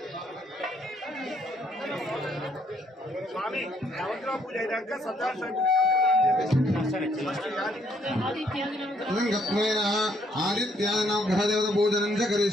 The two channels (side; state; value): both; normal; correlation 0.68